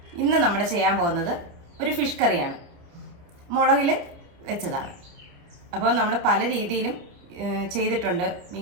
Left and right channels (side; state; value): left; late; 29 ms